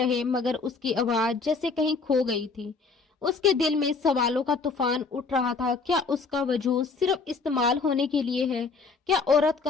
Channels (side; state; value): right; quieter; 4.4 dB